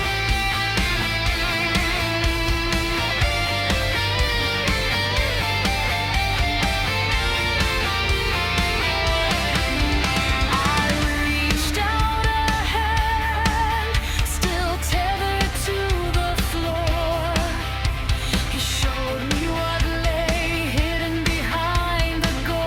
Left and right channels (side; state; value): both; identical; correlation 1.00